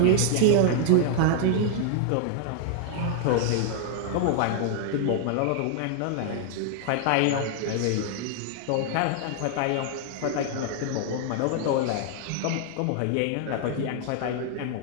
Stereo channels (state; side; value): different; both; correlation -0.01